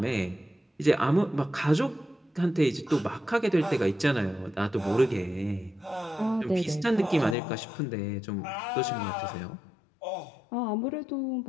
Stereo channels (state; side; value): drops out; right; at 7.4 s